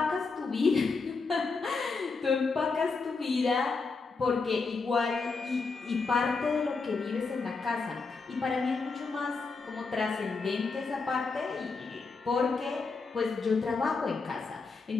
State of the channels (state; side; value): quieter; right; 4.3 dB